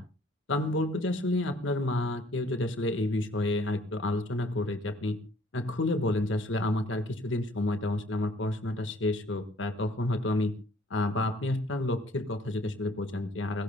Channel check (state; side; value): normal; both; correlation 0.58